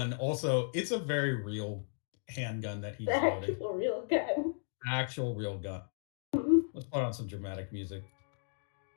also it's a very real handgun that he's loading. Actual real gun. Actual real gun. Let's put on some dramatic music.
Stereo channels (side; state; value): right; silent; digital silence